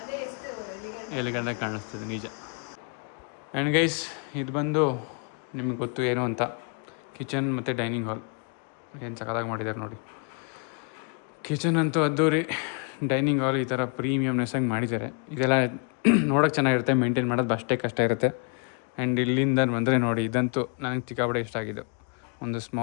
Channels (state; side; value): quieter; right; 39.6 dB